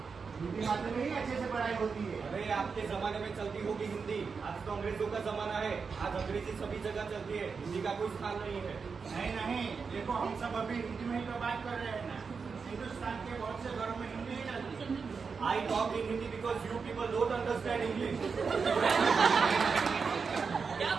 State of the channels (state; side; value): quieter; left; 5.3 dB